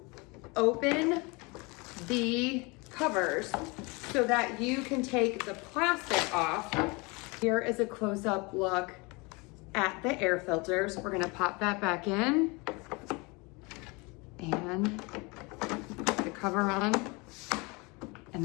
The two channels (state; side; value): quieter; right; 27.6 dB